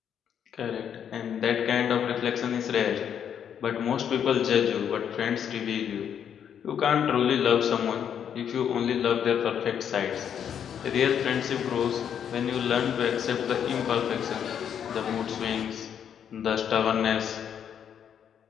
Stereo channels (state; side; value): quieter; right; 8.6 dB